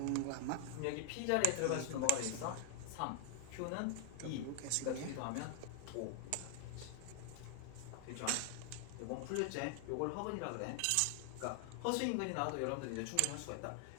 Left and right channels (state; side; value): different; both; correlation 0.00